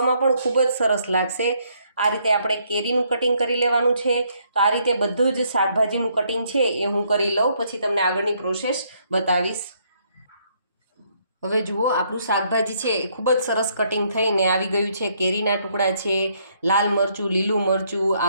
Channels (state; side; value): inverted; both; correlation -0.70